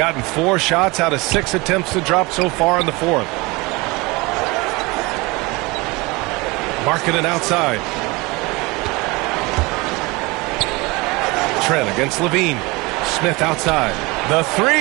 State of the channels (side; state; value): left; quieter; 24.4 dB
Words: 4 shots out of 6 attempts to drop so far in the fourth. Markkanen outside. Trent against Levine. Smith outside. The 3.